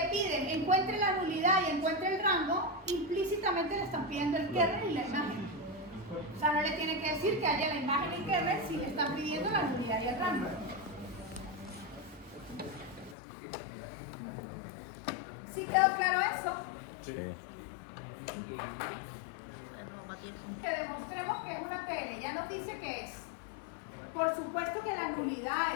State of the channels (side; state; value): right; drops out; at 13.2 s